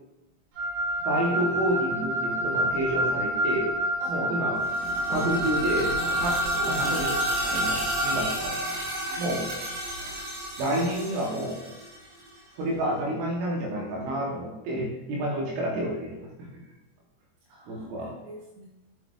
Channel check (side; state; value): left; late; 23 ms